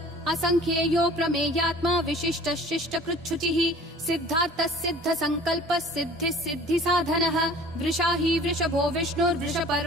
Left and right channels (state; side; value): normal; both; correlation 0.47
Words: असंख्येयो प्रमेयात्मा विशिष्ट शिष्ट कृच्छुचिः सिद्धार्थः सिद्ध संकल्पः सिद्धिः सिद्धि साधनः वृषाही वृषभो